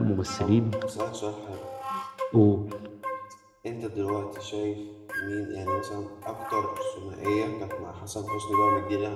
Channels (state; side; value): identical; both; correlation 1.00